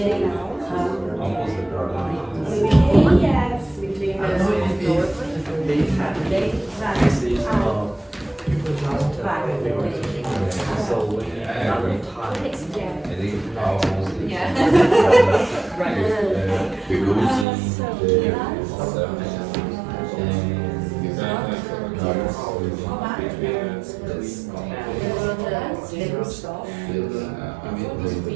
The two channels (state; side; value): drops out; left; at 17.4 s